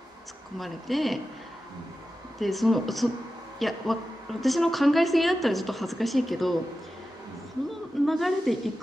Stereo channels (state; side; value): normal; both; correlation 0.93